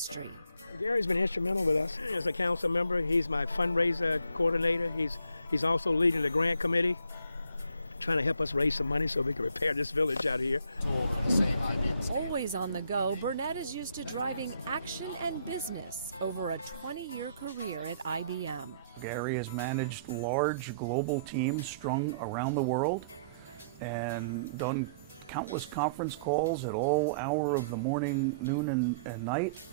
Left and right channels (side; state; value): both; inverted; correlation -0.63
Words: Gary's been instrumental with us as a council member. He's my fundraiser coordinator. He's also leading the grant committee, trying to help us raise some money so we can repair this village out here. Always on the go, Burnette is used to driving action and business over a 20-year career at IBM. Gary has managed large global teams strung around the world and done countless conference calls at all hour of the morning, noon, and night.